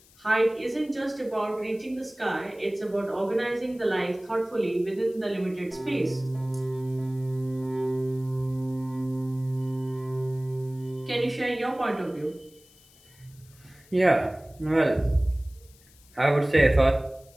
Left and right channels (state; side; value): noise; left; hiss, 27 dB below the sound